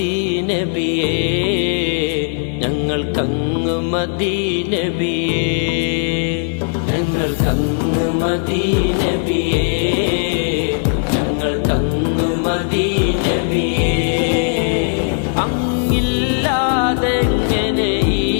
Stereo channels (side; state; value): right; silent; 68 dB below the other